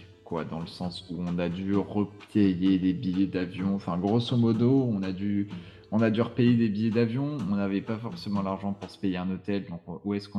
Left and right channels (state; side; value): identical; both; correlation 1.00